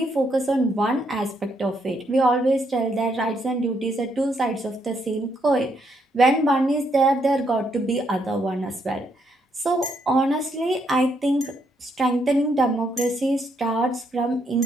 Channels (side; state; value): both; normal; correlation 0.75